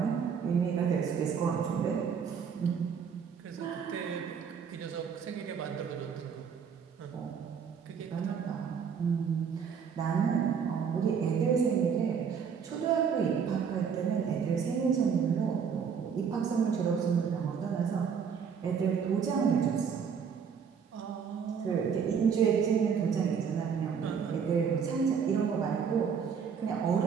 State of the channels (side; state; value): left; quieter; 6.8 dB